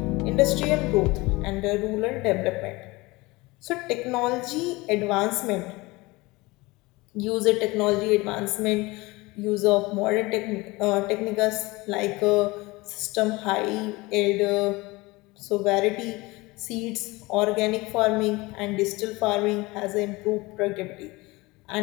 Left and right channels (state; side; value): quieter; right; 22.5 dB